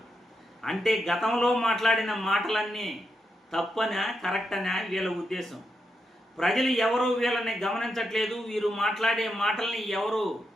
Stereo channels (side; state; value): both; normal; correlation 0.84